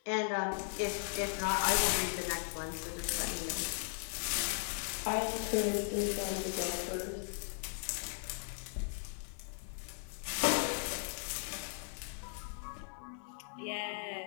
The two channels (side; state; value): right; silent; 53 dB below the other